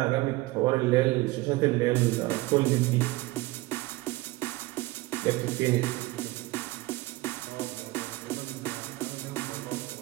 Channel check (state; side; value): quieter; left; 20.2 dB